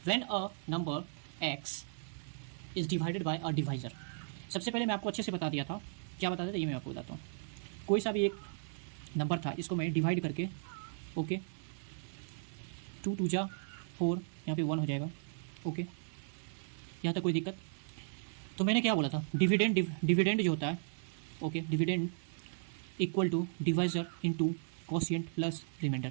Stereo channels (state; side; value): silent; left; digital silence